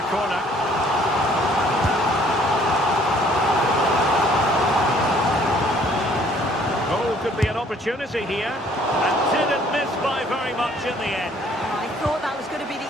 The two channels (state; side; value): normal; both; correlation 0.60